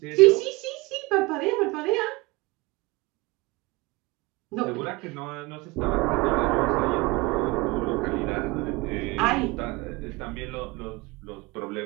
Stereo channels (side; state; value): left; quieter; 23.0 dB